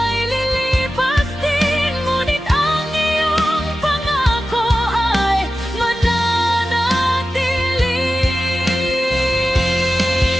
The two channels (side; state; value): both; normal; correlation 0.93